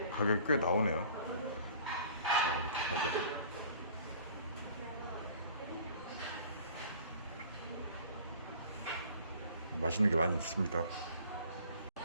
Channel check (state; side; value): inverted; both; correlation -0.50